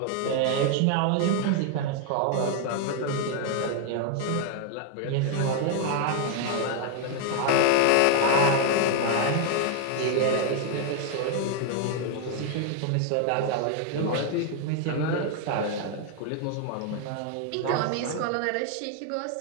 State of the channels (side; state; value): both; different; correlation 0.00